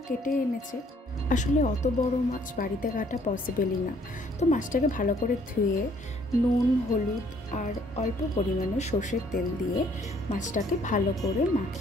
কেটে এনেছে। আসলে অত বড় মাছ বাড়িতে কাটা পসিবলই না। তো মাছটাকে ভালো করে ধুয়ে নুন, হলুদ আর অল্প পরিমাণে সর্ষের তেল দিয়ে মাছটাকে ভালো করে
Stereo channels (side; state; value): both; normal; correlation 0.63